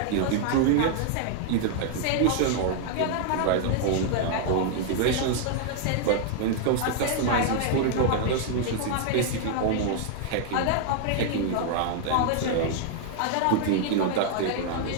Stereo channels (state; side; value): different; both; correlation 0.00